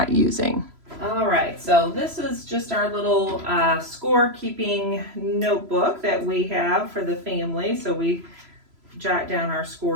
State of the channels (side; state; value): left; late; 3.0 ms